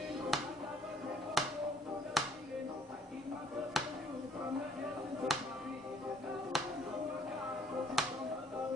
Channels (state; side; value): normal; both; correlation 0.62